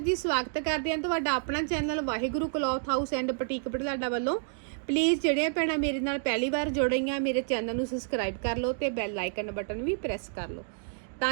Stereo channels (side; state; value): left; silent; digital silence